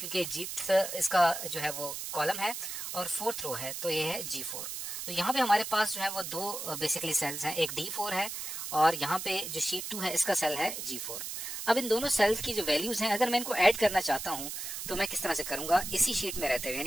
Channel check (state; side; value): noise; right; hiss, 6 dB below the sound